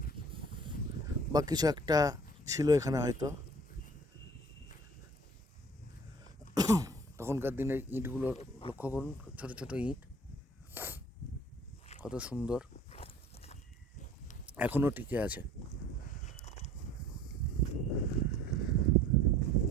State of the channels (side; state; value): both; normal; correlation 0.50